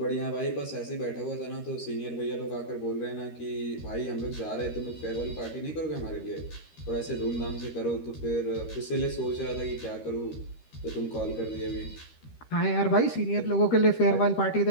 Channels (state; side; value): late; right; 13 ms